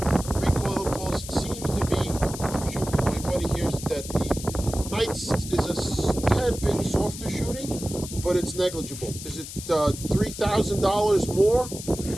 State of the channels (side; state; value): left; noise; hiss, 11 dB below the sound